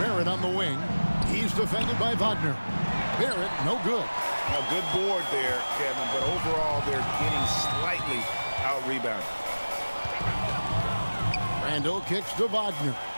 on the wing. He's defended by Wagner. Barrett, no good. A good board there, Kevin, but overall they're getting slightly out-rebounded. Randall kicks to Wagner.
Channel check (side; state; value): both; inverted; correlation -1.00